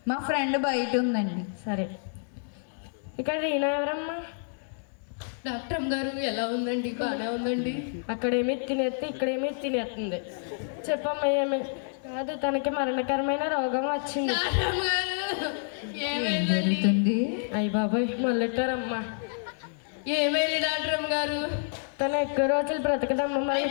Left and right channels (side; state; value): right; silent; digital silence